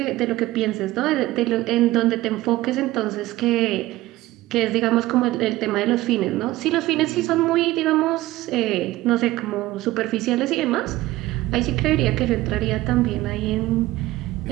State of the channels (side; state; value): left; quieter; 17.2 dB